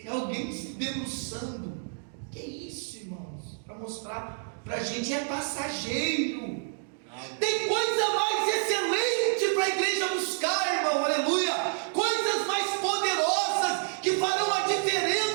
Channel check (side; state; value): left; silent; 59 dB below the other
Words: alguém se debruçando. Que isso, irmãos? Para mostrar para a gente, é passageiro. Tem coisa mais excelente para a igreja buscar, irmão, aleluia. Coisas mais poderosas que farão a